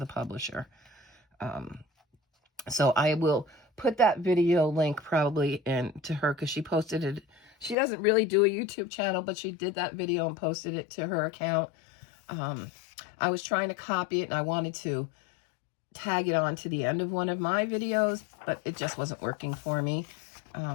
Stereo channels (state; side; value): drops out; right; at 7.8 s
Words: publisher. So I will put that video link probably into her, because she posted it. She doesn't really do a YouTube channel, but she did that video and posted it to her account. I was trying to copy it, and I wanted to tag it on to the end of one of my videos, but it just wasn't working for me.